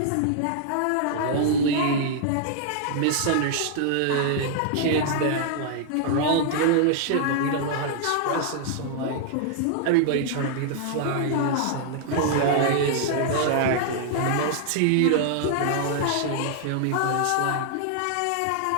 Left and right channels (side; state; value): both; different; correlation -0.01